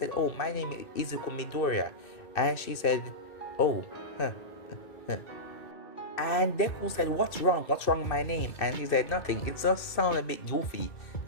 oh, my name is Izuku Midoriya. And she said, oh, huh, huh. And Deku said, what's wrong? What's wrong with my name? And he said, nothing. It just sounds a bit goofy.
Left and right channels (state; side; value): late; right; 2.6 ms